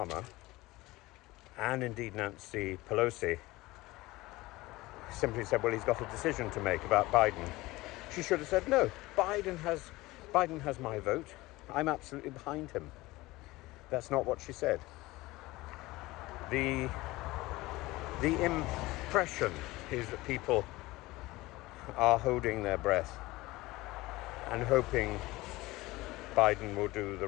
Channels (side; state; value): right; quieter; 19.7 dB